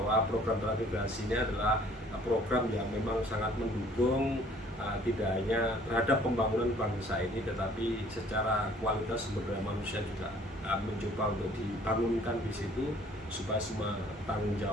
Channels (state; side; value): normal; both; correlation 0.56